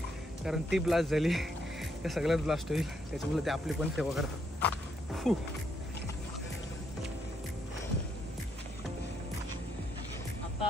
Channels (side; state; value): both; normal; correlation 0.75